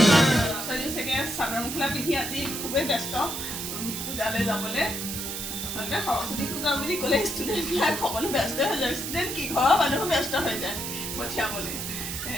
Saraswati Puja বুলি ক'লে ষ্টুডেন্ট বিলাক সকলো ব্যস্ত হৈ যায় ষ্টুডেন্ট কি ঘৰৰ মানুহো ব্যস্ত হৈ যায় পঠিয়াবলৈ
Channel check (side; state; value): right; noise; hiss, 5 dB below the sound